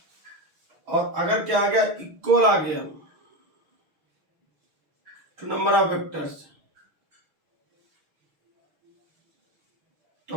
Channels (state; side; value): late; left; 6.4 ms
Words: और अगर क्या आ गया, इक्वल आ गया टू नंबर ऑफ वेक्टर्स, तो